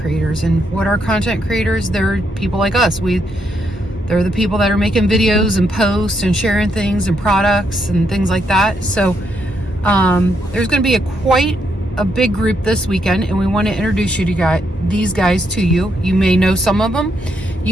And what are content creators? They're people like us. They're the people that are making videos and posts and sharing things and products and things like that. So there's going to be quite a big group this weekend, and we want to introduce you to these guys to you. You may know some of them.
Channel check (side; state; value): both; normal; correlation 0.77